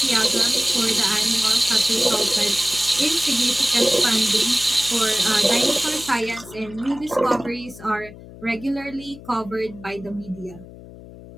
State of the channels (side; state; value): left; noise; hum, 17 dB below the sound